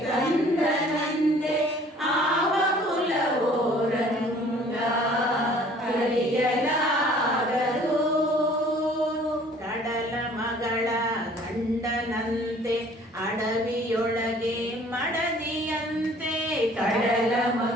ತಂದನಂತೆ ಆವ ಕುಲವೋರಂಗ ಹರಿಯಲಾಗದು ಕಡಲ ಮಗಳ ಗಂಡನಂತೆ ಅಡವಿಯೊಳಗೆ ಮಡದಿಯಂತೆ ಕಡಲ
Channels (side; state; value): both; normal; correlation 0.53